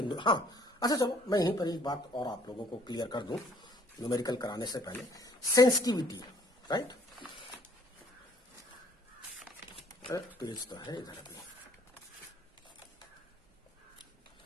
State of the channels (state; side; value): normal; both; correlation 0.60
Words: हाँ अच्छा चलो मैं यहीं पर एक बात और आप लोगों को क्लियर कर दूं न्यूमेरिकल कराने से पहले। सेंसिटिविटी, राइट, पेज तो है इधर अभी।